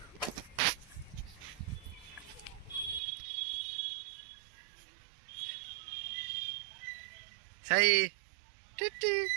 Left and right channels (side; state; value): left; drops out; at 3.0 s